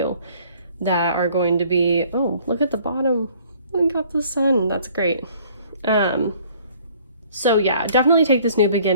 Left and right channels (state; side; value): inverted; both; correlation -0.57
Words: that are going to be, oh, look at the bottom. We got the sun. That's great. So yeah, definitely take this new